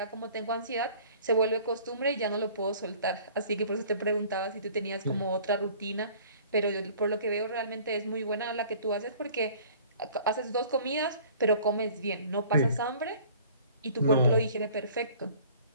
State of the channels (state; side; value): inverted; both; correlation -0.51